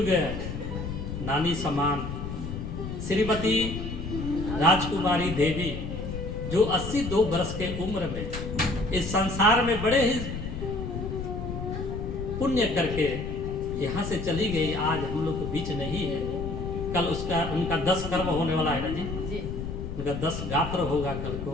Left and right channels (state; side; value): noise; left; rumble, 6 dB below the sound